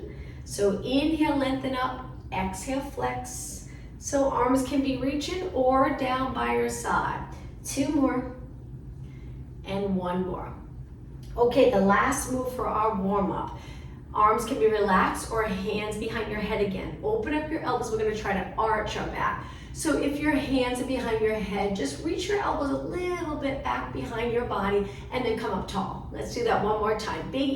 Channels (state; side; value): identical; both; correlation 1.00